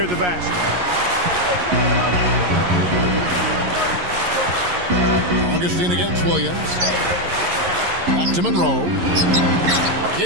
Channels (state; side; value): late; left; 11 ms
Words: the basket. Augustine against Williams. Back to Monroe.